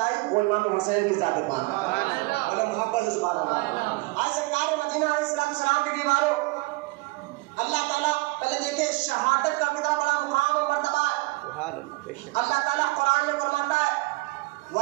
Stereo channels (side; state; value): left; quieter; 24.2 dB